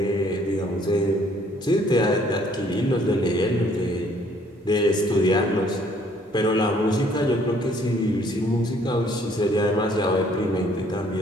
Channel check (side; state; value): both; normal; correlation 0.62